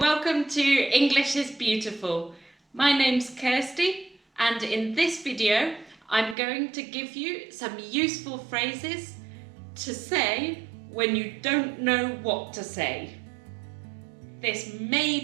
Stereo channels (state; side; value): drops out; left; at 6.4 s